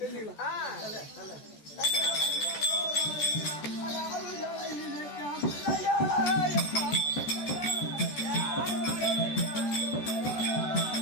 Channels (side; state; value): right; late; 14 ms